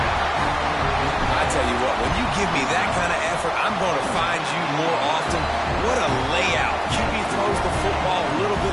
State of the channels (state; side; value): identical; both; correlation 1.00